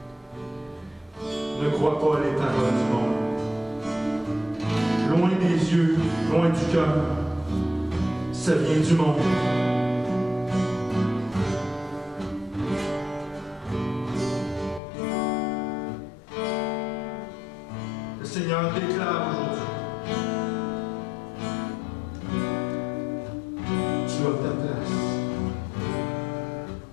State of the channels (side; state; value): right; drops out; at 14.8 s